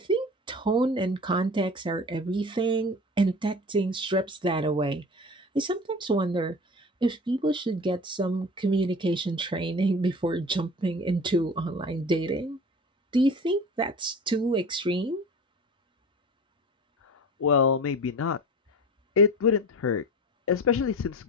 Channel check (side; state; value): both; normal; correlation 0.37